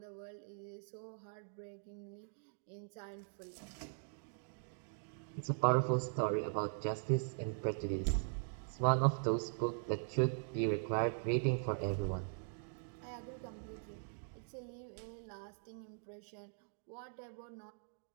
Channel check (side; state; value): left; silent; digital silence